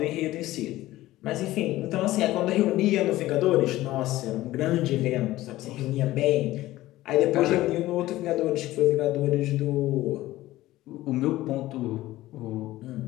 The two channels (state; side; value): quieter; right; 16.4 dB